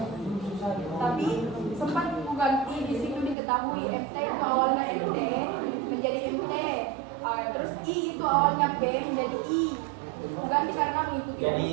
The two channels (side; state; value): left; drops out; at 3.4 s